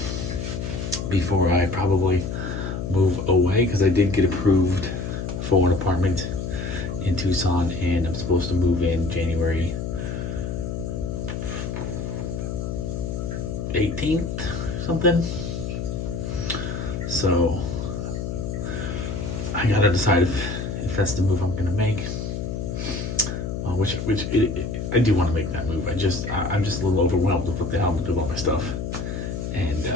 before I probably move away, because I did get approved for an apartment in Tucson, and I'm supposed to move in January 18th, something. So I gotta decide if that's the move I'm gonna make. I do want to make that move. I'm just a little overwhelmed with what the hell I'm gonna do about my stuff, and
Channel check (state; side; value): noise; left; hum, 4 dB below the sound